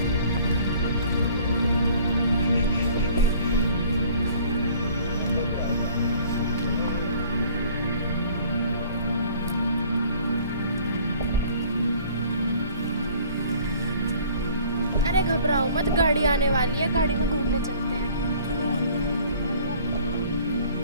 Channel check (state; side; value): inverted; both; correlation -0.53